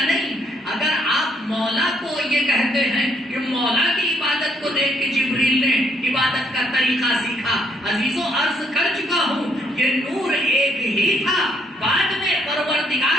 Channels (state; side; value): normal; both; correlation 0.70